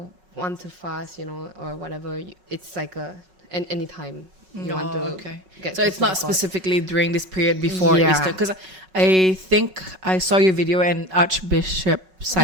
want to fast, or whatever, it's like any time. You want to get so it's closer not to God. specifically during this period before Yeah. Easter, because I think I saw your video and Archbishop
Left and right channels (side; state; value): left; late; 5.3 ms